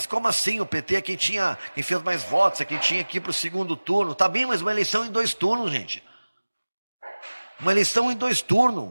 como assim? O PT é quem fez mais votos, é quem tinha aqui para o segundo turno. Tá bem, mas uma eleição em 2 turnos, gente. Uma eleição em 2 turnos.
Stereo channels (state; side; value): inverted; both; correlation -1.00